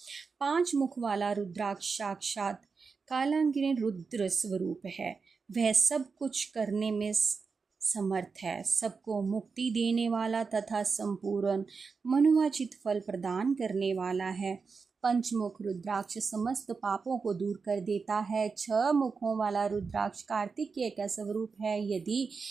पांच मुख वाला रुद्राक्ष साक्षात कालांगिनी रुद्र स्वरूप है। वह सब कुछ करने में समर्थ है, सबको मुक्ति देने वाला तथा संपूर्ण मनोवांछित फल प्रदान करने वाला है। पंचमुख रुद्राक्ष समस्त पापों को दूर कर देता है। छह मुखों वाला रुद्राक्ष कार्तिकेय का स्वरूप है। यदि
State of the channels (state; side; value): quieter; left; 5.0 dB